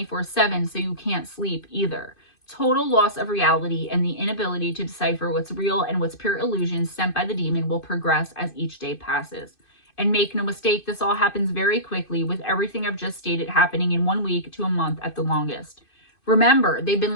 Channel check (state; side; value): late; right; 2.5 ms